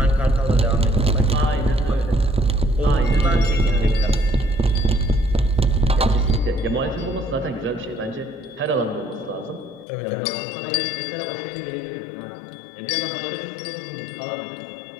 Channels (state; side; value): drops out; right; at 9.9 s